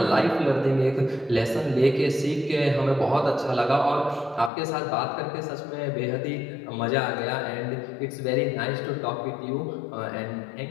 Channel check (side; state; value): right; drops out; at 4.5 s